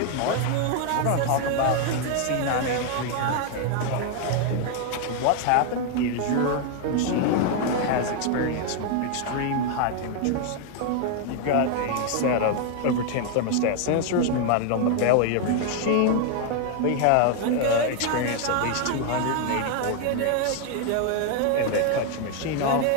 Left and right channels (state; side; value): different; both; correlation 0.00